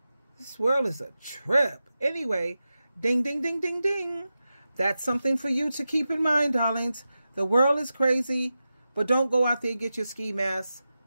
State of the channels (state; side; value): inverted; both; correlation -0.92